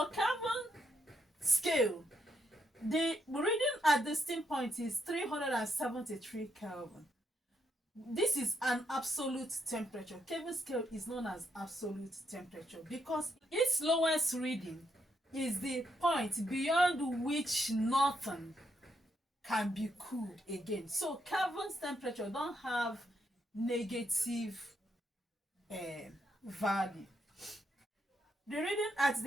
Kelvin scale, the reading at the steam point is 373 Kelvin. This is an absolute temperature. Kelvin scale is known as absolute temperature because its lowest reading is the point beyond which nothing can be cooled again. So Kelvin's temperature don't have negative value. The reading at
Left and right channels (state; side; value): normal; both; correlation 0.77